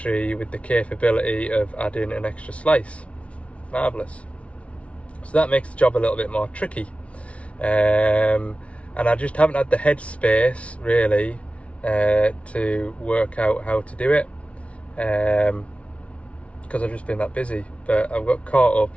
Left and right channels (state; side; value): late; right; 0.063 ms